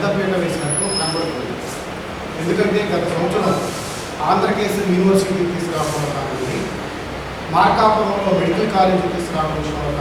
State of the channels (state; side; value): identical; both; correlation 1.00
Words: వేసినట్టు కనబడుతుంది. ఎందుకంటే గత సంవత్సరం ఆంధ్రకేశ్వరి యూనివర్సిటీ తీసుకురావడంలో కానివ్వండి, మార్కాపురంలో మెడికల్ కాలేజీ తీసుకురావడం విషయంలో